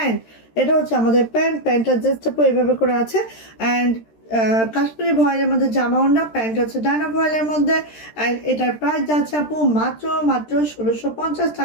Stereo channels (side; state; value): right; late; 13 ms